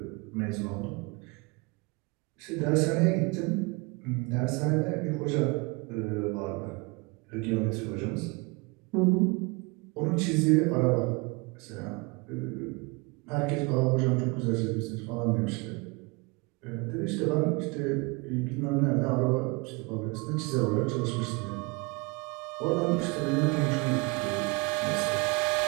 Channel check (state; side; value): quieter; left; 28.2 dB